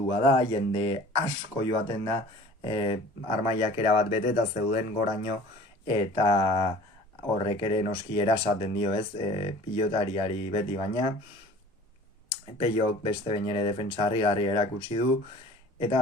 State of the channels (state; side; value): normal; both; correlation 0.46